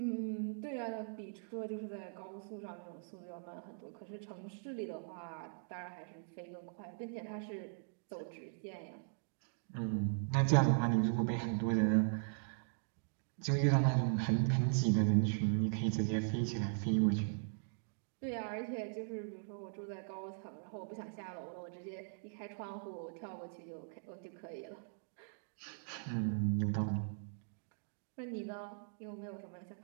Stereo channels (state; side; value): silent; left; digital silence